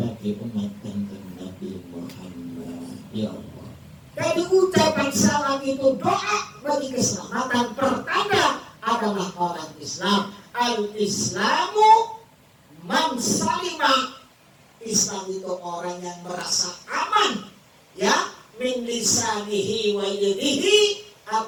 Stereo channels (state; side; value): identical; both; correlation 1.00